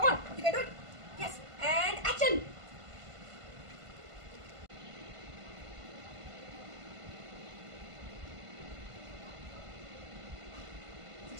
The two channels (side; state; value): left; late; 1.5 ms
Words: on, you can do it. Yes, and action.